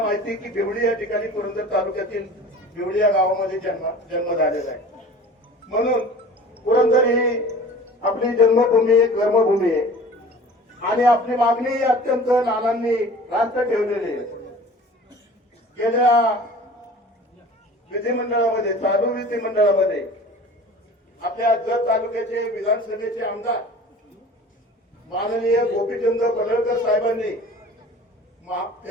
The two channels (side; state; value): both; normal; correlation 0.43